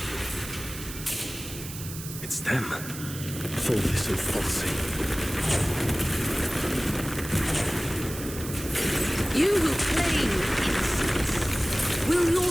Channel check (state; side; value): noise; right; hiss, 11 dB below the sound